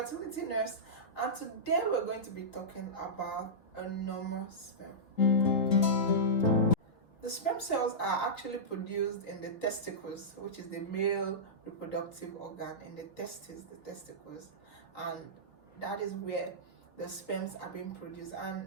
nurse, and today we're going to be talking about a normal sperm. The sperm cells are actually produced in the testicles, which is the male reproductive organ, in the testicles, and that is where the sperms are being produced.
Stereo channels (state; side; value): late; right; 3.9 ms